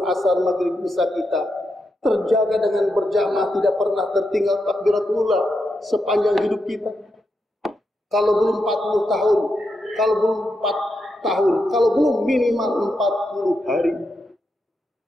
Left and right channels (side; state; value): both; normal; correlation 0.85